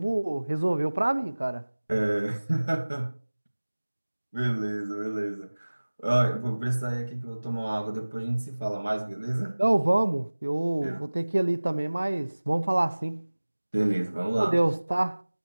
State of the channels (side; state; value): both; inverted; correlation -1.00